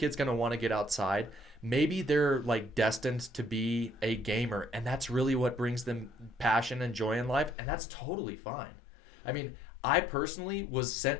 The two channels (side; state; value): right; drops out; at 7.6 s